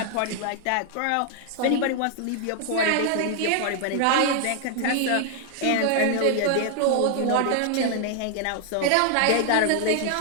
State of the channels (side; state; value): both; different; correlation 0.00